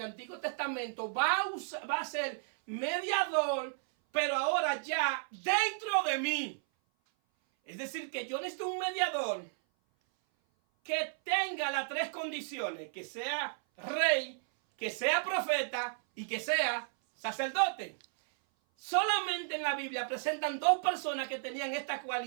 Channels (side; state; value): left; silent; 55 dB below the other